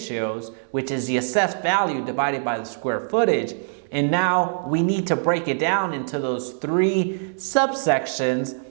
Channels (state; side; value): silent; left; digital silence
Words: which is the assessed value divided by the square footage, and now we need to break it down into those 3 subsections